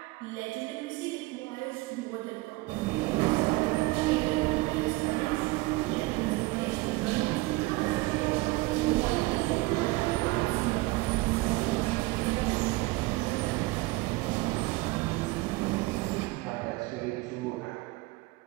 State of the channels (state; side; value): quieter; left; 21.7 dB